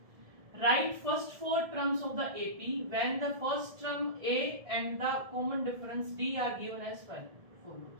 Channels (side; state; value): left; late; 1.7 ms